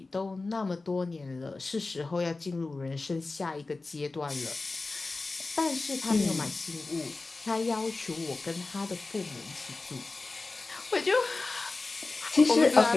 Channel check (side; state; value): right; quieter; 3.5 dB